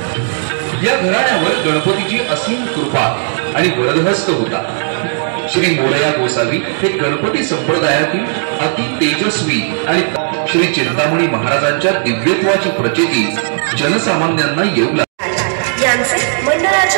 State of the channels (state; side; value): silent; left; digital silence